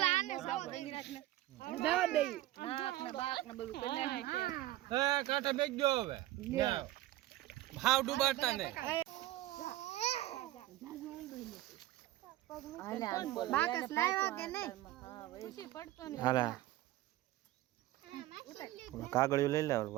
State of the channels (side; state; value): left; quieter; 15.7 dB